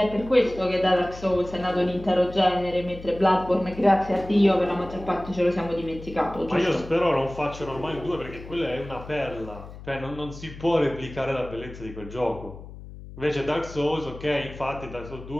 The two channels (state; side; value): noise; left; hum, 14 dB below the sound